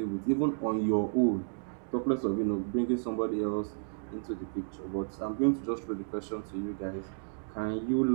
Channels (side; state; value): left; silent; digital silence